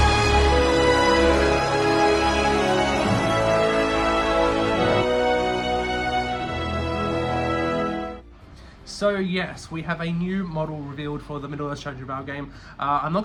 So yes, we have a new model revealed for the Middle-earth strategy battle game. I'm not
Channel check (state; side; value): identical; both; correlation 1.00